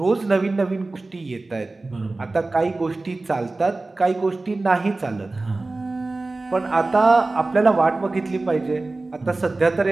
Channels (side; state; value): left; quieter; 3.2 dB